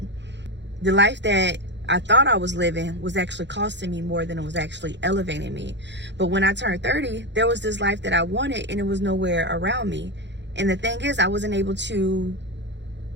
The life that I thought I was living was actually costing me more than it was actually elevating me. But when I turned 30, there was this life that I wanted, and it was nowhere around me. And the thing is, I wasn't able to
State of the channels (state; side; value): late; left; 0.52 ms